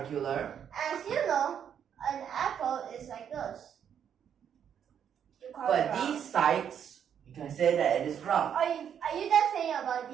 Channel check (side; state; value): left; quieter; 8.5 dB